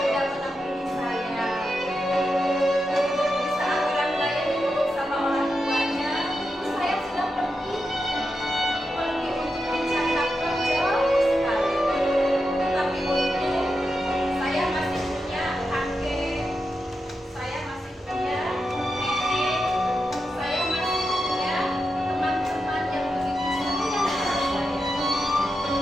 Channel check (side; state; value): both; normal; correlation 0.88